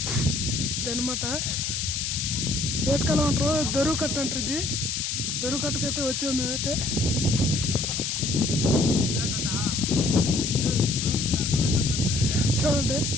ఇదనమాట ఏటకాలం అంటారు, దొరువు కట్ట అంటారు. ఇది దొరువు కట్టకైతే వచ్చాము మేమైతే. చూడండి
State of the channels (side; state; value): left; noise; hiss, 2 dB below the sound